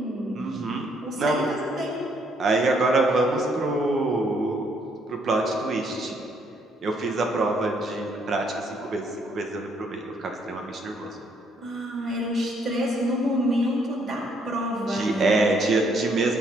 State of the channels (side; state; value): both; normal; correlation 0.69